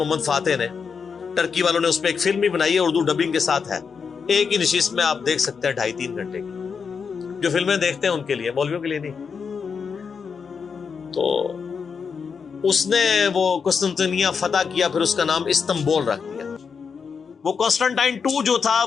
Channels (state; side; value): quieter; right; 5.9 dB